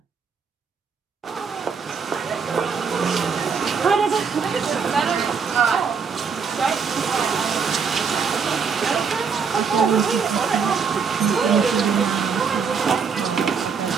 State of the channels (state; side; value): quieter; left; 5.9 dB